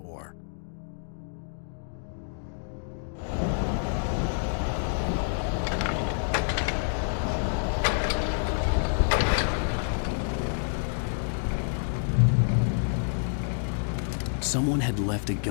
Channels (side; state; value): right; silent; digital silence